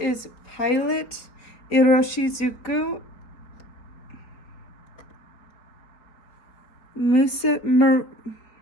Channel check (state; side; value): late; right; 4.5 ms